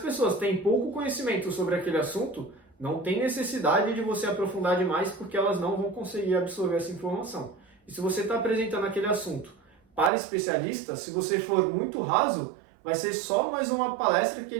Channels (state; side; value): drops out; left; at 10.1 s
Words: têm pouco conhecimento sobre aquele assunto, não tem necessidade de você aprofundar demais, porque elas não vão conseguir absorver essa informação. E se você está apresentando aquele assunto para especialistas, se você for muito raso, vai ser só mais uma palestra que